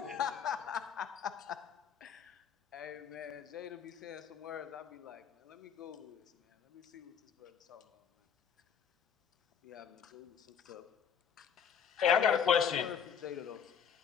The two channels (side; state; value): right; quieter; 7.6 dB